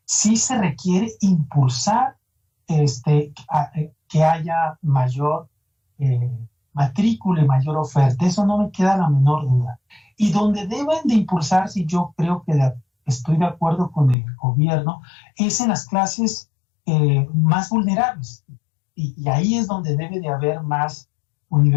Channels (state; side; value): drops out; right; at 14.2 s